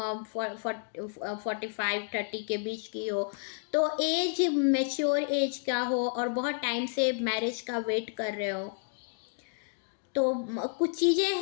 के बीच की हो, तो एज मैच्योर एज का हो और बहुत टाइम से मैरिज का वेट कर रहे हो। तो कुछ चीज़ें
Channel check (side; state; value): right; silent; 57 dB below the other